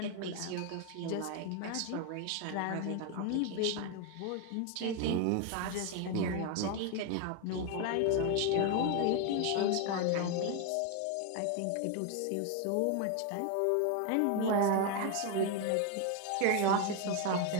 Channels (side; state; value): both; different; correlation 0.01